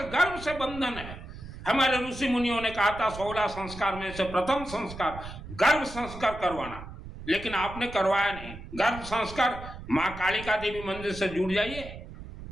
गर्भ से बंधन है। हमारे ऋषि मुनियों ने कहा था 16 संस्कार में से प्रथम संस्कार गर्भ संस्कार करवाना, लेकिन आपने करवाया नहीं। गर्भ संस्कार माँ कालिका देवी मंदिर से जुड़ जाइए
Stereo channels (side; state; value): right; noise; rumble, 13 dB below the sound